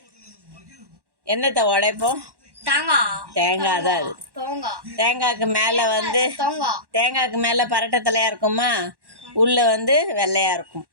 என்னத்தை உடைப்போம்? தேங்காய் தான் அது. தேங்காய்க்கு மேல பரட்டை தலையா இருக்குமா, உள்ள வெள்ளையா இருக்கும்.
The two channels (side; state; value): left; late; 1.1 ms